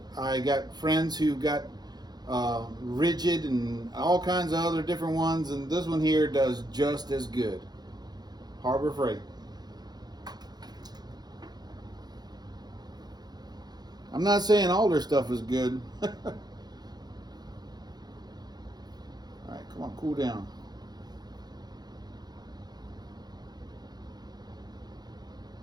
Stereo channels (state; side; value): late; left; 0.20 ms